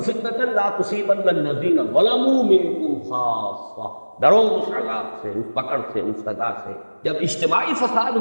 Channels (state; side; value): inverted; both; correlation -1.00